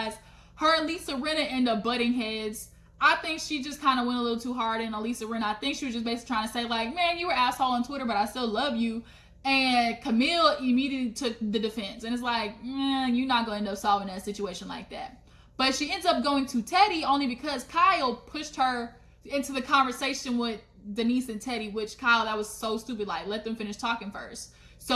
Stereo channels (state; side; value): identical; both; correlation 1.00